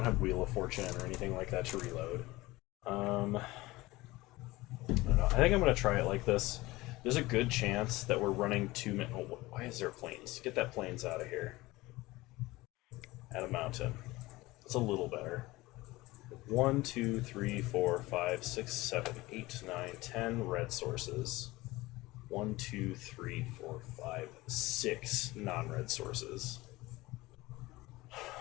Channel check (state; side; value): quieter; right; 19.8 dB